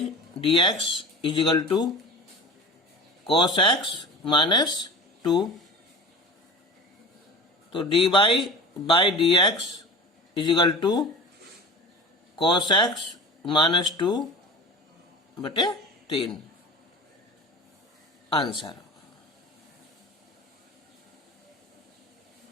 d x is equal to cos x minus 2। तो dy by d x is equal to cos x minus 2 बटे 3 आंसर।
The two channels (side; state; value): both; normal; correlation 0.33